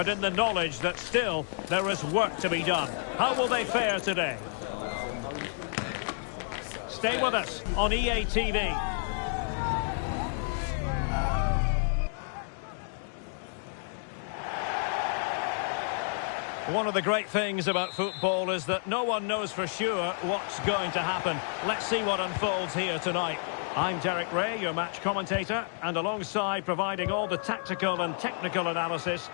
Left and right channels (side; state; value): right; silent; 58 dB below the other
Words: in the knowledge that still there is work to be done. How will they fare today? Stay with us on EA TV. One of the great things about football is that no one knows for sure what's going to happen. Let's see what unfolds here tonight. I'm Derek Ray, your match commentator, and alongside providing all the tactical and technical analysis,